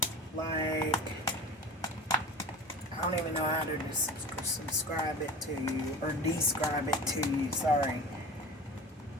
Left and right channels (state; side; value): normal; both; correlation 0.35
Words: like, I don't even know how to subscribe it to you, or describe it to you, sorry.